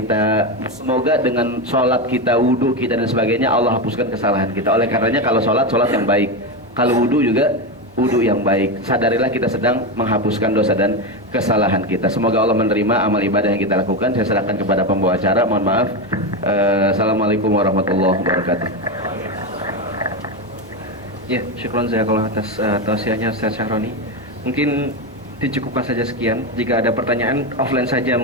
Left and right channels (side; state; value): both; normal; correlation 0.13